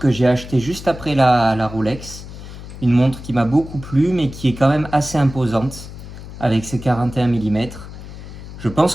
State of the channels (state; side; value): noise; left; hum, 13 dB below the sound